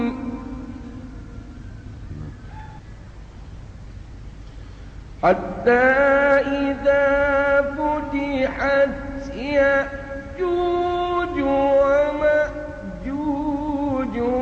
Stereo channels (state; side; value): identical; both; correlation 1.00